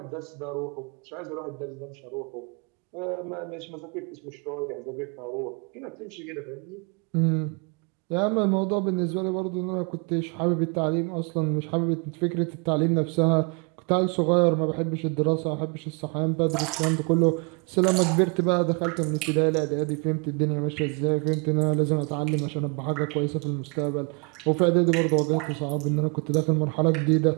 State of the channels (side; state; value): left; quieter; 34.3 dB